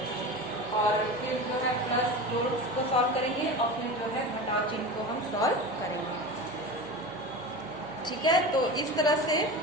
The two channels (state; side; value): noise; right; hum, 21 dB below the sound